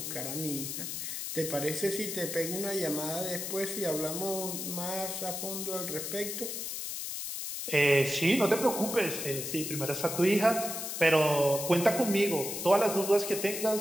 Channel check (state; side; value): noise; left; hiss, 5 dB below the sound